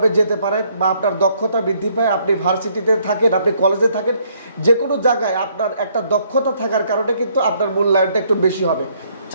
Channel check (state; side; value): inverted; both; correlation -0.67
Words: যেতে পারেন, বা আপনার দক্ষতা বৃদ্ধি পায়। আপনি ভার্সিটিতে থাকেন, আপনি কলেজে থাকেন, যে কোনো জায়গায় আপনার একটা দক্ষতা থাকার কারণে কিন্তু আপনার মূল্যায়নটা একটু বেশি হবে।